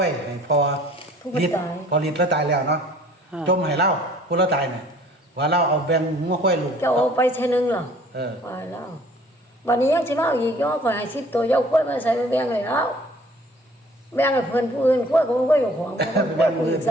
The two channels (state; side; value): normal; both; correlation 0.54